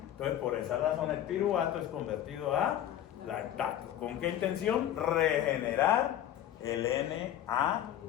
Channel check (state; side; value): quieter; right; 11.4 dB